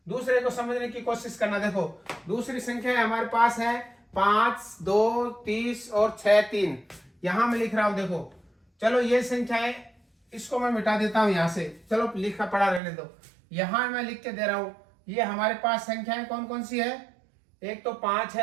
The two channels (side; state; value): left; drops out; at 12.8 s